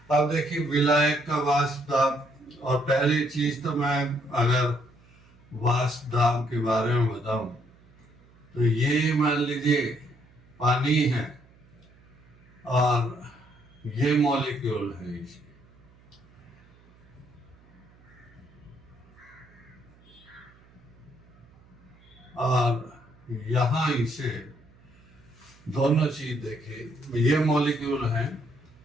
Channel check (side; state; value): right; noise; hum, 27 dB below the sound